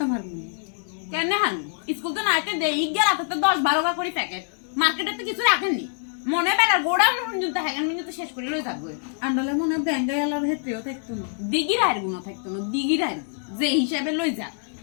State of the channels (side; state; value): right; silent; 62 dB below the other